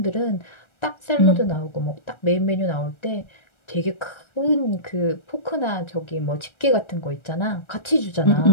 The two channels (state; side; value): late; right; 1.3 ms